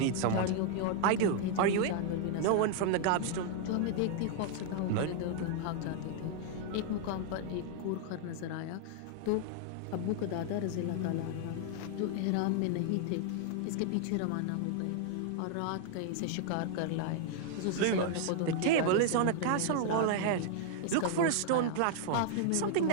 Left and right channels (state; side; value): different; both; correlation 0.00